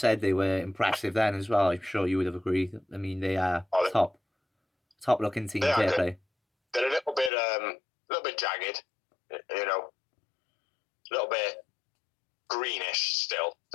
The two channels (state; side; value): drops out; right; at 7.3 s